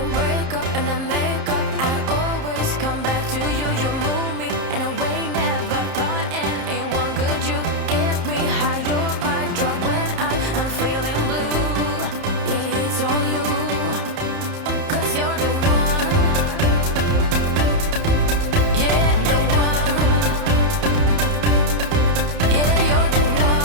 break up and then make up. I always come back to you. You move me in a way never thought anyone could. You get me high. You're my drug when I'm feeling blue. Yeah, it's all you. 'Cause you're the one. Yeah, the one.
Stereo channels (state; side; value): late; left; 30 ms